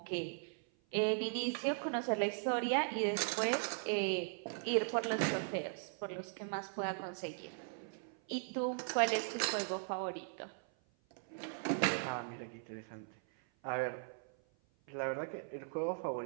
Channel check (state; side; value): silent; left; 52 dB below the other